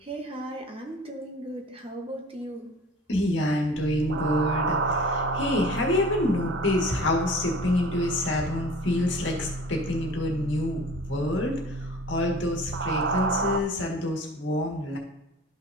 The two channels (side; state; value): both; normal; correlation 0.44